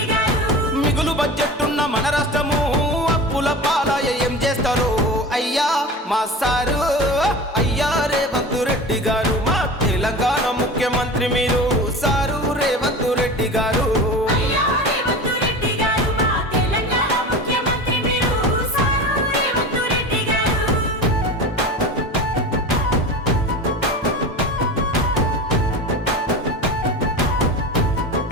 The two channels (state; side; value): normal; both; correlation 0.32